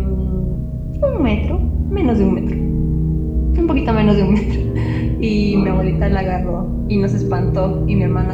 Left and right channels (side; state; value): both; identical; correlation 1.00